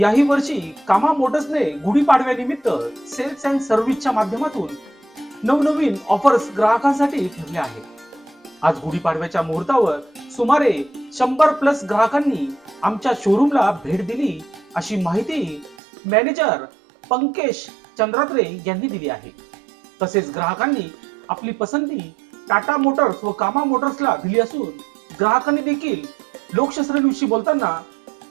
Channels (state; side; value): drops out; left; at 15.8 s